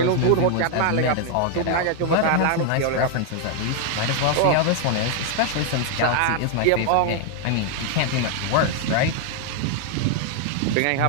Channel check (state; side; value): different; both; correlation 0.00